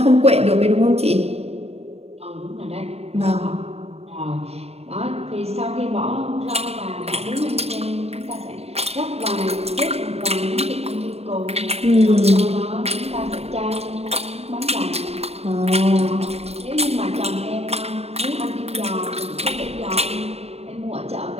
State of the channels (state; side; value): late; left; 0.30 ms